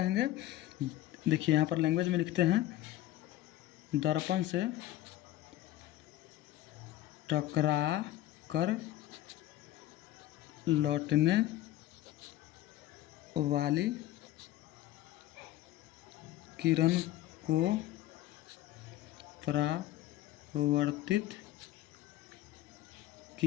देखिए यहाँ पर लैंग्वेज में लिखते हैं, दर्पण से टकरा कर लौटने वाली किरण को परावर्तित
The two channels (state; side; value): quieter; right; 14.4 dB